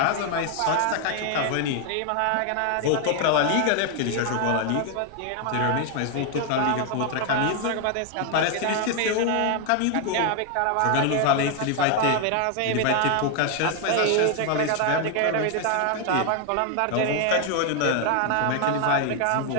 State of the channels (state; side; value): different; both; correlation 0.01